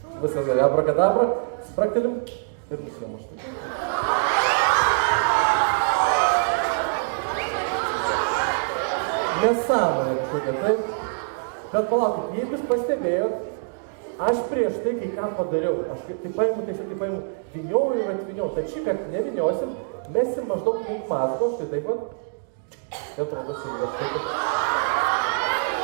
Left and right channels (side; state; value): left; silent; digital silence